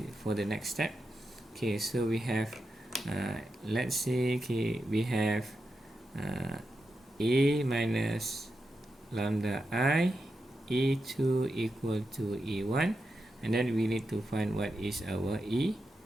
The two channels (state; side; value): normal; both; correlation 0.88